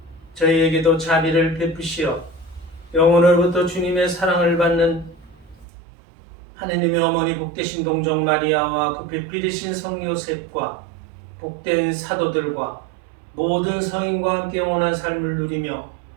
저희에게도 자비를 베푸시어 영혼으로부터 주님의 사랑을 받는 하느님의 어머니 복되신 동정 마리아와 그 배필이신 성 요셉과 복된 사도들과 모든 성인과 함께 영원한 삶을 누리며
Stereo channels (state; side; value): drops out; left; at 5.7 s